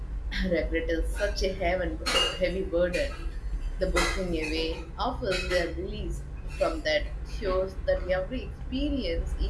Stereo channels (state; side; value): identical; both; correlation 1.00